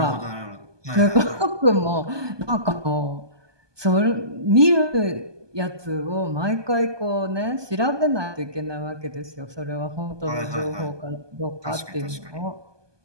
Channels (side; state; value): left; late; 1.2 ms